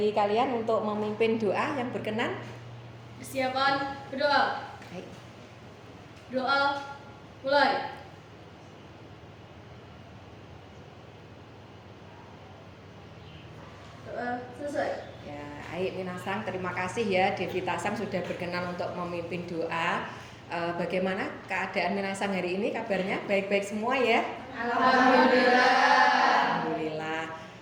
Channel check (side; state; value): both; identical; correlation 1.00